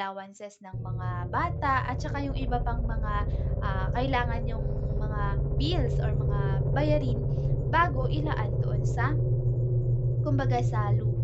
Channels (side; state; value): both; identical; correlation 1.00